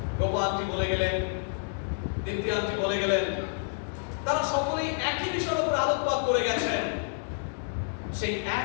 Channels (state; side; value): silent; right; digital silence